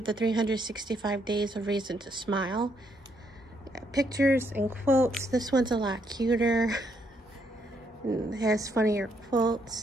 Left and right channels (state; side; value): normal; both; correlation 0.73